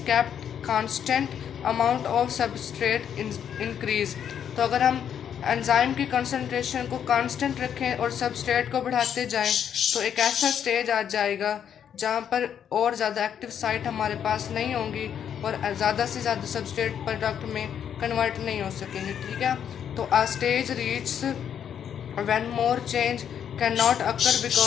kept constant amount of substrate increase. तो अगर हम एंजाइम की कंसंट्रेशन को कांस्टेंट रखें और सबस्ट्रेट को बढ़ाते जाएं तो एक ऐसा स्टेज आ जाएगा जहाँ पर और ज़्यादा एक्टिव साइट हमारे पास नहीं होंगी और ज़्यादा से ज़्यादा सबस्ट्रेट प्रोडक्ट में कन्वर्ट नहीं हो सकेंगे। ठीक है, तो a stage reach when more change cannot occur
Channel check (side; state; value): right; quieter; 8.7 dB